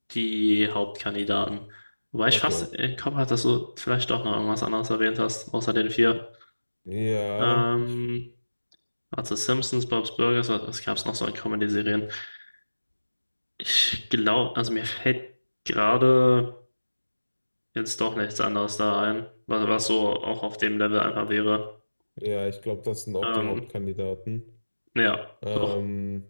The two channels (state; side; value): inverted; both; correlation -1.00